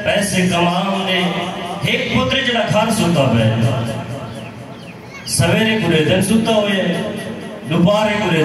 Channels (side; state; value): both; identical; correlation 1.00